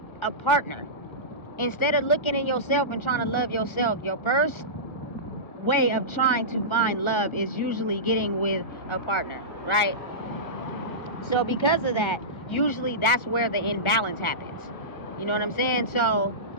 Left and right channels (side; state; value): right; late; 1.4 ms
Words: a partner. Instead of looking in yourself and trying to love yourself, your first way of trying to find love is usually getting with a partner, right? So because of that, usually that's where the imbalance happens. You know what I'm saying? So